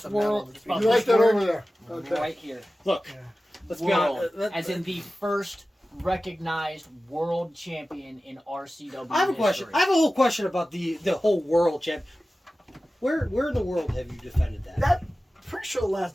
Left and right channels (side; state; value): both; normal; correlation 0.95